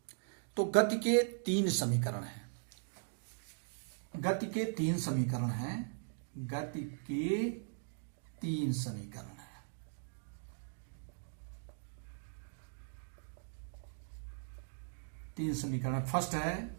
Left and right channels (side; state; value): left; silent; digital silence